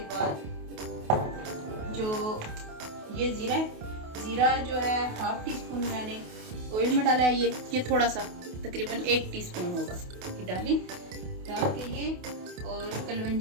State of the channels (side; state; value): left; late; 28 ms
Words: बाद जो ये ज़ीरा है, ज़ीरा जो है हाफ टी स्पून मैंने ऑयल में डाला है। ये थोड़ा सा तकरीबन 1 टीस्पून होगा, ये डाल के ये, और